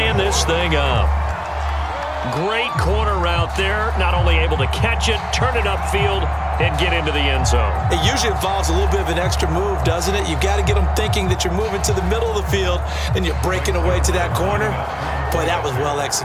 this thing up. Great corner route there. Not only able to catch it, turn it upfield, and get into the end zone. It usually involves a little bit of an extra move, doesn't it? You've got to get them thinking that you're moving to the middle of the field and you're breaking away to that corner. Boy, that was well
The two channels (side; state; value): both; identical; correlation 1.00